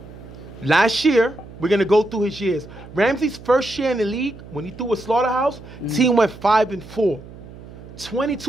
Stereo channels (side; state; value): right; noise; hum, 17 dB below the sound